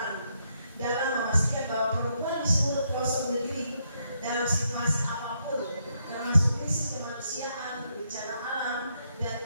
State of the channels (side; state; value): both; inverted; correlation -0.77